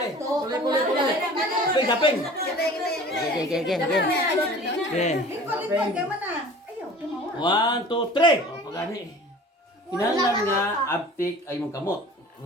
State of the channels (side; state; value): both; normal; correlation 0.43